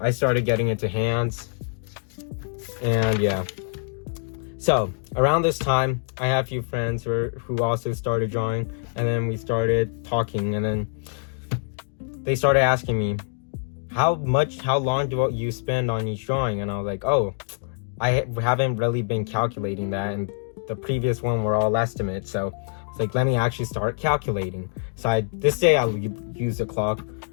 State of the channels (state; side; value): silent; right; digital silence